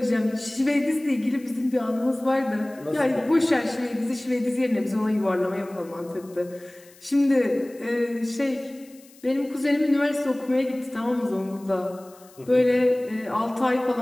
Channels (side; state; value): left; noise; hiss, 26 dB below the sound